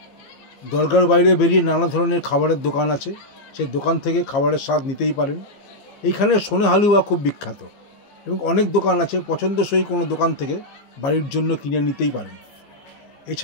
দরগার বাইরে বেরিয়ে নানা ধরনের খাবারের দোকান আছে, সেই দোকান থেকে খাবারের স্বাদ নিতেই পারেন। এইখানে সোনে হালুয়া খুব বিখ্যাত এবং অনেক দোকান আছে, পছন্দসই কোনো দোকান থেকে বাড়ির জন্য কিনে নিতেই পারেন।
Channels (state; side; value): late; right; 15 ms